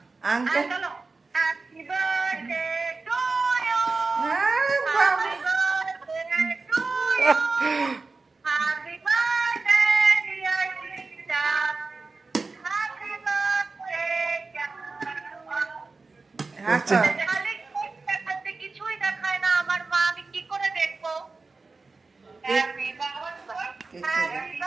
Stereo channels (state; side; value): quieter; left; 3.9 dB